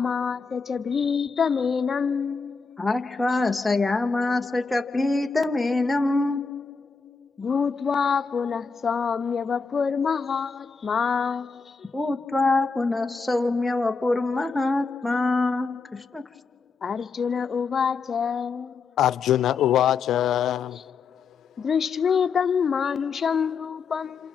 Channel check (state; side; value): quieter; right; 4.9 dB